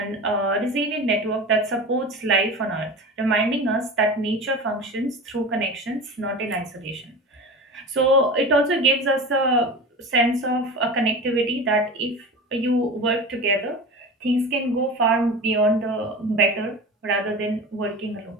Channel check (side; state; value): both; normal; correlation 0.31